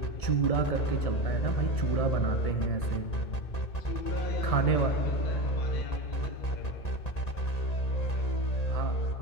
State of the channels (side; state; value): right; late; 1.9 ms